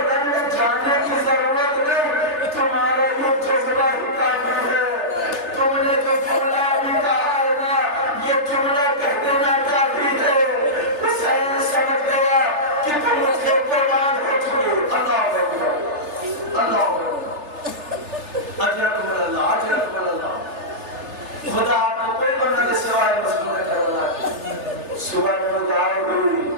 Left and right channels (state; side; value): late; left; 3.3 ms